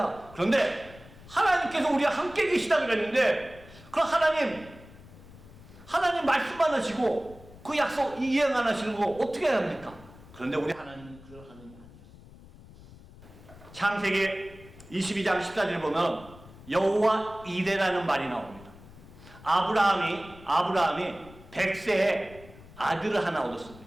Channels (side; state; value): left; noise; rumble, 20 dB below the sound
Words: 그런데 하나님께서 우리와 함께 계시다 그랬는데 그럼 하나님 말씀만 하시고 그 약속 이행 안 하시는 거 어떻게 해야 합니까? 그런데 우리 하나님은 그런 하나님이 아니었어요. 창세기 22장 14절 보면 여호와 이레라는 말이 나옵니다. 아브라함이 100세에 아들을 하나